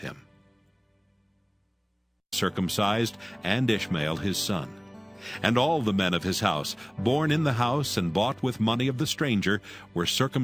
Circumcised, and Ishmael his son. And all the men of his house, born in the house and bought with money of the stranger, were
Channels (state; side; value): identical; both; correlation 1.00